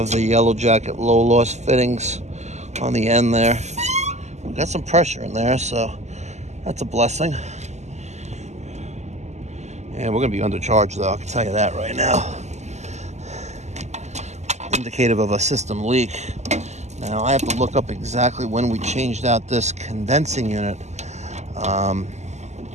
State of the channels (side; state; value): left; late; 0.33 ms